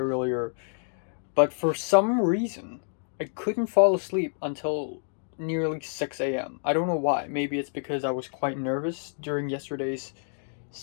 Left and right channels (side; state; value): right; silent; 59 dB below the other